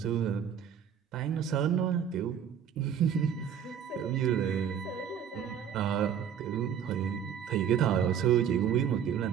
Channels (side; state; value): left; quieter; 8.5 dB